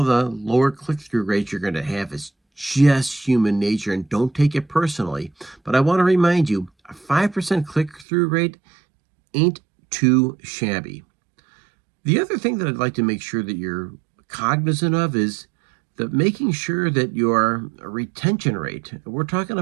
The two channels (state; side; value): drops out; left; at 8.1 s